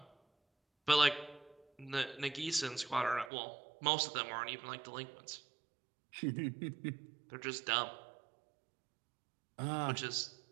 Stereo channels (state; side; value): drops out; left; at 3.3 s